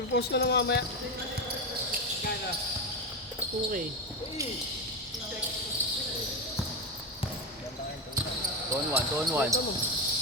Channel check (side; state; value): both; normal; correlation 0.14